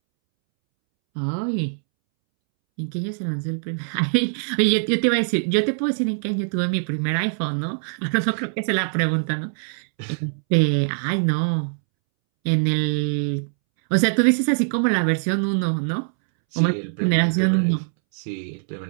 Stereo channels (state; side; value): silent; left; 64 dB below the other